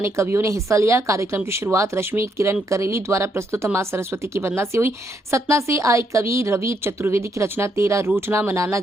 कवियों ने हिस्सा लिया। कार्यक्रम की शुरुआत रश्मि किरण करेली द्वारा प्रस्तुत मां सरस्वती की वंदना से हुई। सतना से आए कवि रवि चतुर्वेदी की रचना तेरा रूठना मनाना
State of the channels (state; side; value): normal; both; correlation 0.75